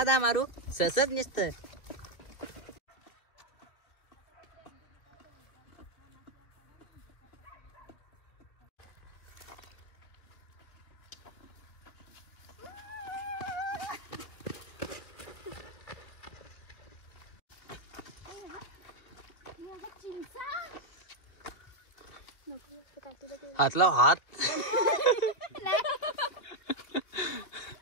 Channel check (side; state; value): right; late; 2.6 ms